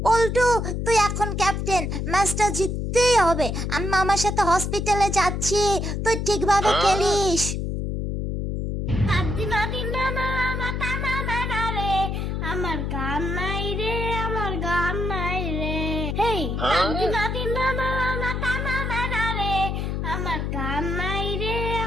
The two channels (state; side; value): noise; left; hum, 2 dB below the sound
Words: পল্টু, তুই এখন ক্যাপ্টেন, ম্যাচটা জিততেই হবে। আমি মামার সাথে হসপিটালে যাচ্ছি, তুই ঠিকভাবে খেলিস। আমার গান নাই রে, আমার গান নাই রে, হেই আমার গান নাই রে,